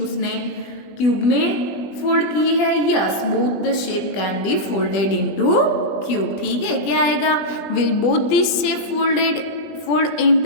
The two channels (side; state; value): right; late; 20 ms